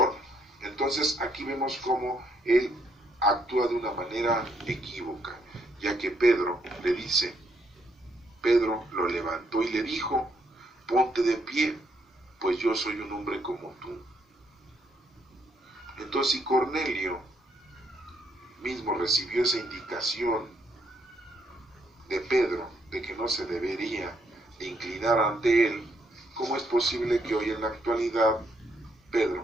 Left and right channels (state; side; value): normal; both; correlation 0.72